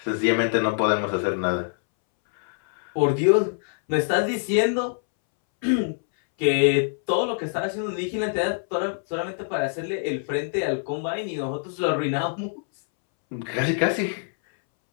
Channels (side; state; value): right; silent; 62 dB below the other